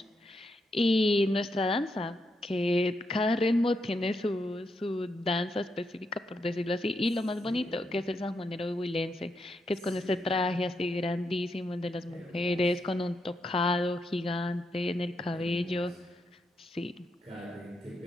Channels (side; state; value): both; normal; correlation 0.82